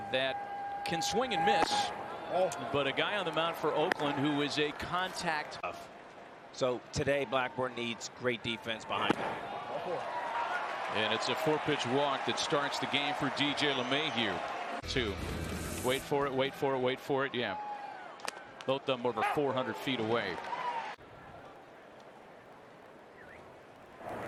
that can swing and miss. But a guy on the mound for Oakland who is a contact. So today Blackburn needs great defense behind him. And it's a 4-pitch walk that starts the game for DJ LeMahieu. 2. Wait for it, wait for it, wait for it. Yeah. Both of them over 400 feet away.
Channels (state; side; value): identical; both; correlation 1.00